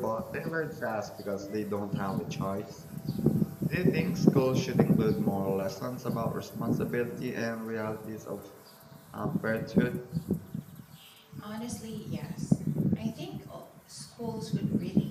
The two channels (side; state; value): both; identical; correlation 1.00